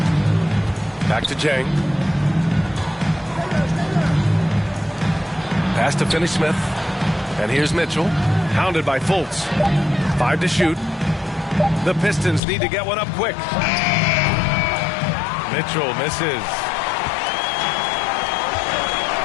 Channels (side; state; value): right; drops out; at 12.4 s